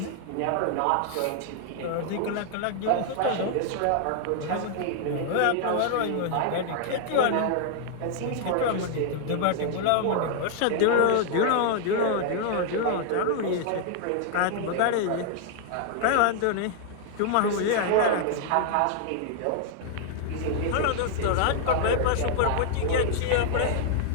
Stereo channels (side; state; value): both; different; correlation 0.00